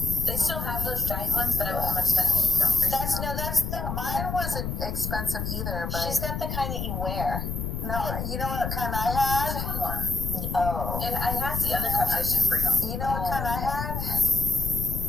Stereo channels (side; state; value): left; noise; rumble, 4 dB below the sound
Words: They still have those giant ones, but I wasn't much spend. That's the Mine wasn't expensive either, but She's got the kind that you wear. no, you know what kind I had? one. Oh. And I have the other cups. I should bring them. You know what kind I had?